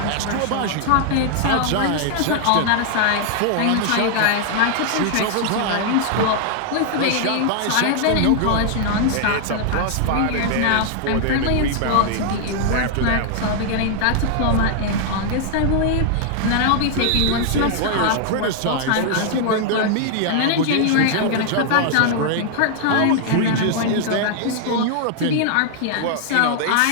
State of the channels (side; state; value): both; different; correlation 0.00